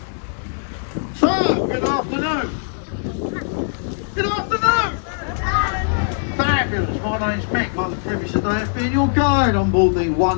So, good afternoon. Good afternoon. Fabulous. My name's Mick. Like the previous day, being your guide on board the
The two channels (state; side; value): silent; right; digital silence